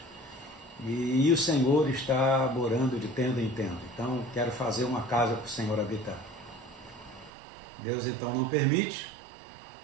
e o Senhor está morando de tenda em tenda, então quero fazer uma casa para o Senhor habitar. Deus então não permite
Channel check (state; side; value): drops out; left; at 7.3 s